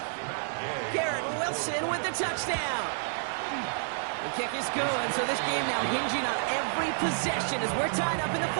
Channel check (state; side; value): silent; left; 58 dB below the other